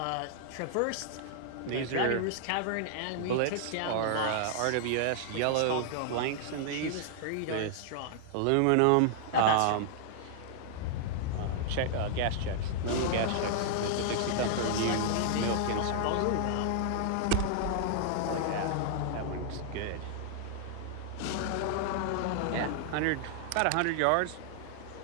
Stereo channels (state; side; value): different; both; correlation -0.01